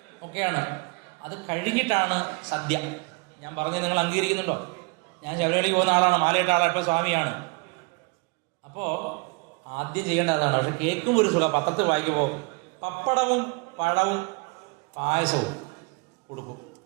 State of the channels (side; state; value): left; quieter; 28.4 dB